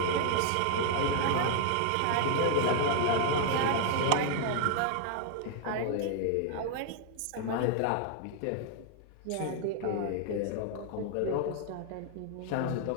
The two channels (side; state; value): both; different; correlation 0.00